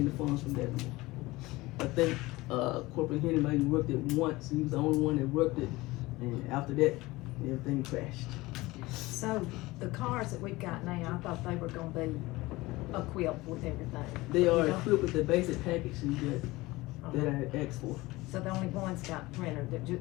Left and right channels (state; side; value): quieter; right; 20.4 dB